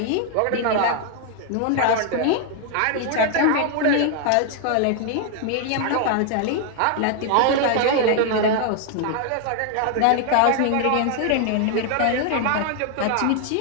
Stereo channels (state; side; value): different; both; correlation 0.00